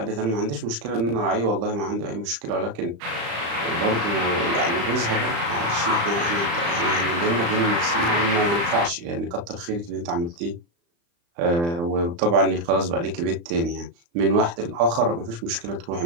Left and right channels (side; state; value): left; late; 35 ms